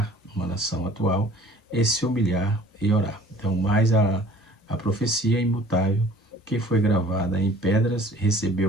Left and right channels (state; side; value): normal; both; correlation 0.51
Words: uma nação atual e se humilhar e orar. Então, mais a profecia imutável que foi gravada em pedras